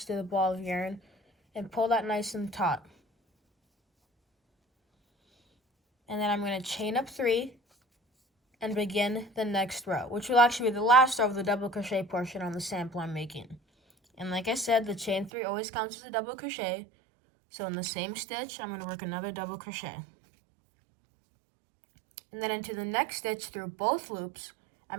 to the ball of yarn and pull that nice and taut. And then I'm going to chain up 3 and begin the next row, which will actually be the last row of the double crochet portion on the sample I'm making. And like I said, the chain 3 always counts as a double crochet. So in the same stitch, I'm going to work another double crochet. And then into the next stitch through both loops,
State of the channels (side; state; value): left; drops out; at 15.3 s